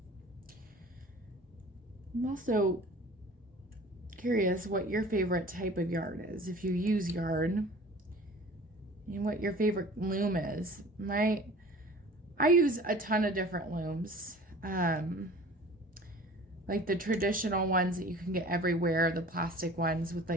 I'm also curious what your favorite type of yarn is, if you use yarn, and what your favorite loom is. I use a ton of different looms, like the traditional ones that you can get everywhere, the plastic ones with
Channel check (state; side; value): normal; both; correlation 0.44